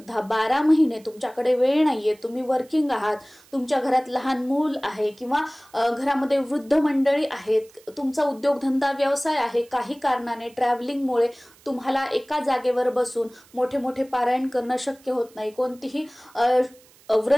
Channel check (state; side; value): noise; right; hiss, 28 dB below the sound